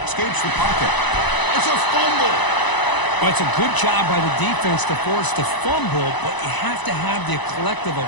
Escapes the pocket. It's a fumble. Well, it's a good job by the defense to force the fumble, but you have to have the collective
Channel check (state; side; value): late; right; 1.0 ms